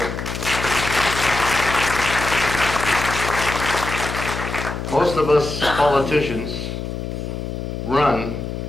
Most of us politicians run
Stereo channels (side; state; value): left; noise; hum, 6 dB below the sound